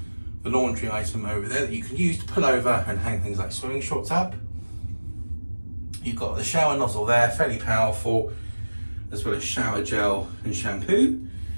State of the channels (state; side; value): inverted; both; correlation -1.00